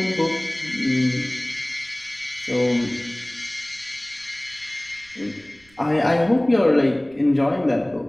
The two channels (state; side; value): noise; right; rumble, 29 dB below the sound